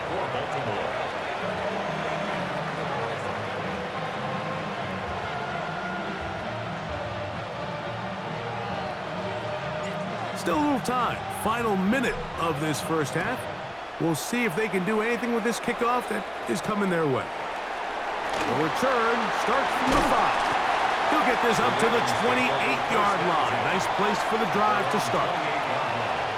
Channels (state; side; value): identical; both; correlation 1.00